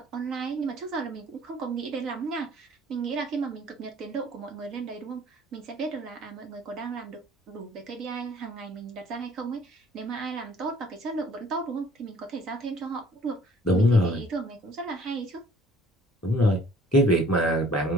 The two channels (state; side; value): normal; both; correlation 0.55